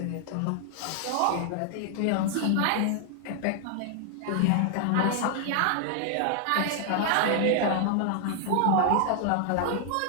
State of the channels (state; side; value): different; both; correlation 0.00